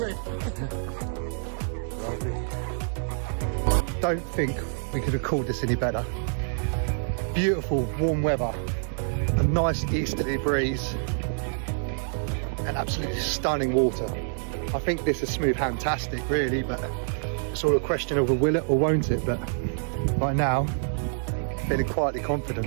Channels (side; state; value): left; silent; digital silence